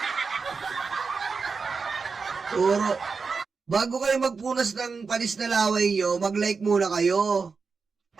Puro. Bago kayo magpunas ng panis na laway nyo, mag-like muna kayo.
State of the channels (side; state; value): left; quieter; 4.9 dB